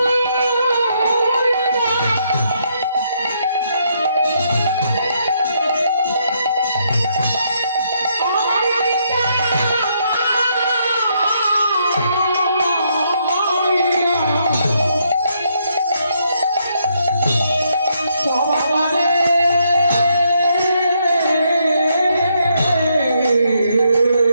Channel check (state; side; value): inverted; both; correlation -0.75